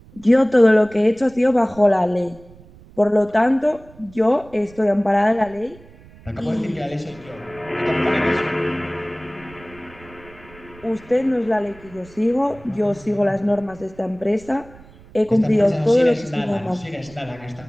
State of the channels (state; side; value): noise; right; rumble, 23 dB below the sound